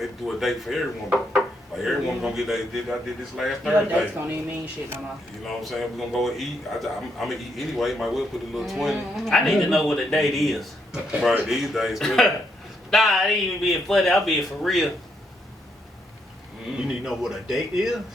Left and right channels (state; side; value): normal; both; correlation 0.76